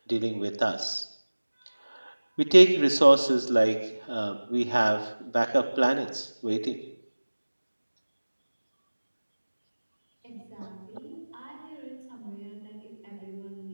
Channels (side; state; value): both; inverted; correlation -1.00